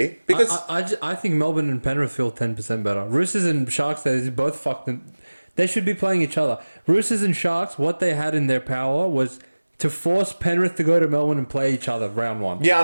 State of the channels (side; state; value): both; inverted; correlation -1.00